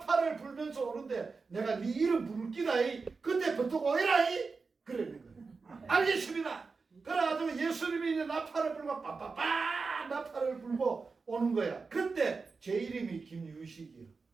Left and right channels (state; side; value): quieter; left; 4.5 dB